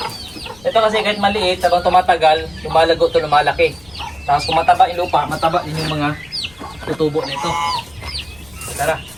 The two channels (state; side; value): noise; left; rumble, 26 dB below the sound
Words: Ito kasi kahit maliit, habang tumatagal, lumalago to, lumalaki. Tapos kung mataba yung lupa, mataba din yung mga tutubo nito. Tara.